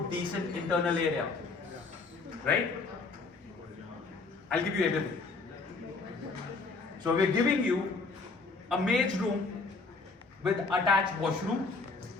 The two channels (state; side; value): quieter; right; 4.0 dB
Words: decent internal area. Right? I'll give you everything. So we are giving you a maid's room with attached washroom.